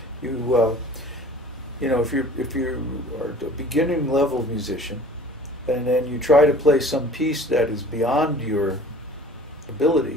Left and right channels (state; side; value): normal; both; correlation 0.46